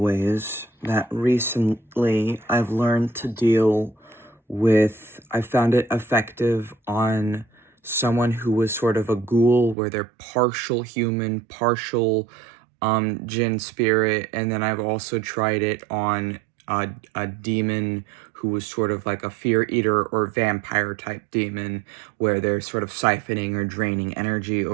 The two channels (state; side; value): drops out; left; at 9.8 s